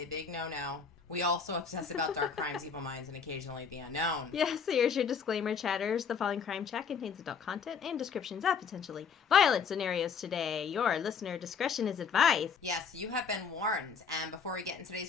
big no-no. We also obsess about dark crimes, evil minds, and occasionally the unknown. Yes, so here's your disclaimer, chatters. The following crime chat contains adult content and descriptions of potentially violent scenarios today. Your listener discretion is advised. Yes, you have been warned. And before we get in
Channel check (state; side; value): quieter; right; 6.1 dB